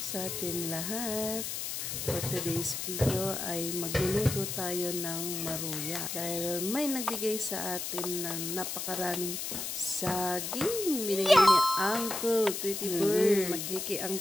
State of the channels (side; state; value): left; noise; hiss, 4 dB below the sound